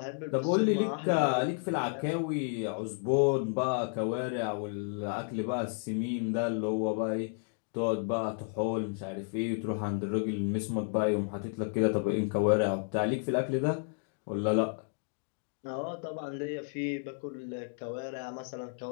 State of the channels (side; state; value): right; silent; 56 dB below the other